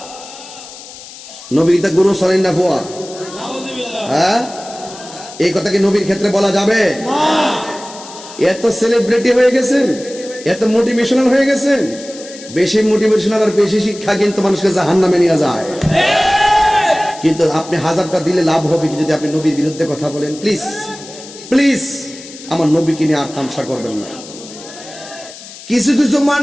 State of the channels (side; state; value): left; noise; hiss, 16 dB below the sound